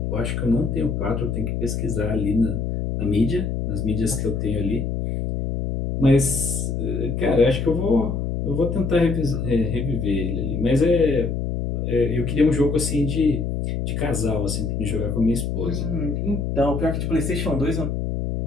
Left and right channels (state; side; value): noise; left; hum, 2 dB below the sound